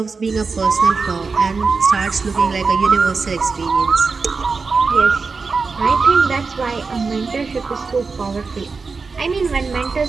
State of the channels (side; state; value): left; quieter; 4.6 dB